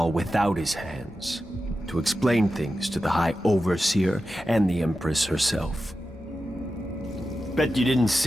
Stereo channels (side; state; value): both; normal; correlation 0.92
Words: without his hands, to explain things to the High Overseer and the Empress herself. Bet you didn't